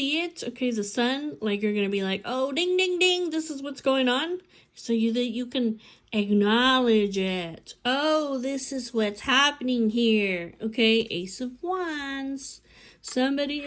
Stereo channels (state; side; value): identical; both; correlation 1.00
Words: it, okay, the sun, like you're going to be like, oh, ding, ding, ding, this is what's going on. So that you can acknowledge it. Oh, this is what's happening here. Okay, Ace of Wands. Somebody